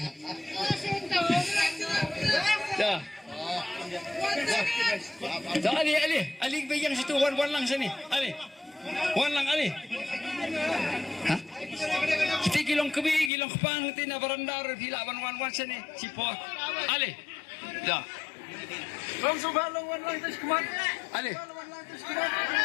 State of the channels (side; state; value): right; drops out; at 13.3 s